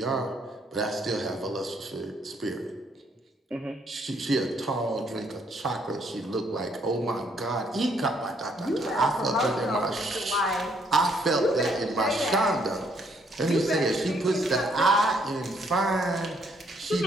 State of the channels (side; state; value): both; normal; correlation 0.69